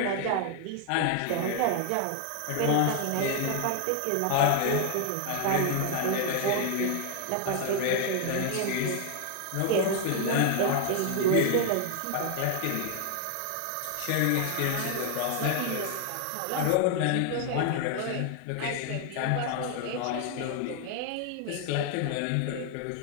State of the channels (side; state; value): both; different; correlation 0.00